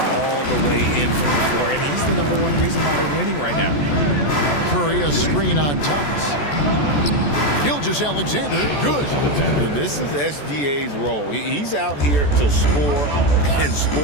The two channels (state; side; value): late; right; 14 ms